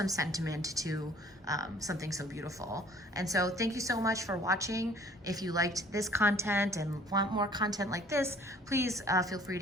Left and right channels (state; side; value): normal; both; correlation 0.55